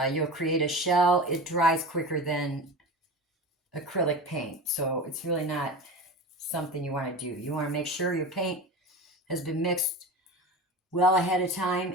You'll create a shell. It dries quicker than acrylic paint. So it's really not something you want to do. You want to make sure your paint has been mixed well ahead of time.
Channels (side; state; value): both; normal; correlation 0.30